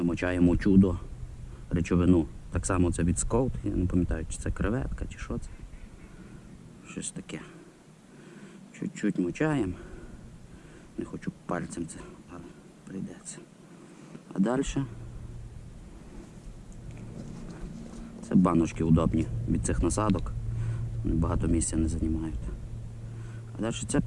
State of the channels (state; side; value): identical; both; correlation 1.00